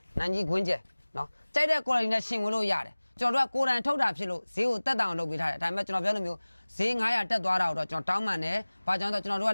နံကြီးခွင်းကျက်နော်ကြိုက်တဲ့ quality နဲ့ရှင်ဝင်လို့ရတယ်ကျွန်တော်တို့ကကိုယ်တိုင်ထုတ်တာဖြစ်လို့ဈေးကိုတက်တောင်လုပ်ပေးထားတယ်ဒါပေမဲ့ကျွန်တော်ပြောလို့မျိုးဈေး900တက်သွားတာတော့ကျွန်တော်တောင်းပန်တယ်ဘာကြောင့်လဲဆိုတော့ကျွန်တော်တို့က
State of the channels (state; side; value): inverted; both; correlation -1.00